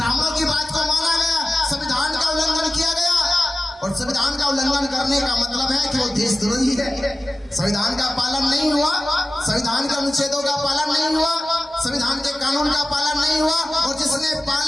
की बात को माना गया, संविधान का उल्लंघन किया गया। और संविधान का उल्लंघन करने का मतलब है कि वो देशद्रोही है। संविधान का पालन नहीं हुआ, संविधान के अनुच्छेदों का पालन नहीं हुआ, संविधान के कानून का पालन नहीं हुआ, और जिसने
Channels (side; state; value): both; normal; correlation 0.96